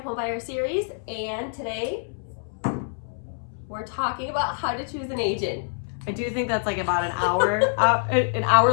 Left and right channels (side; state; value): right; silent; 61 dB below the other